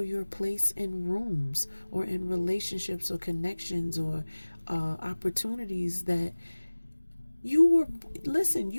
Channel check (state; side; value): inverted; both; correlation -1.00